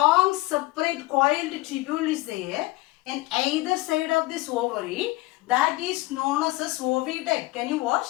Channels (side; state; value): right; quieter; 20.7 dB